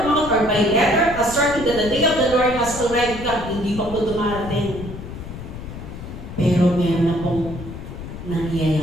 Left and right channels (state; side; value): noise; left; rumble, 11 dB below the sound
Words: mouth or by letter, asserting that the day of the Lord has already come, hindi pa po dumarating. Pero meron na pong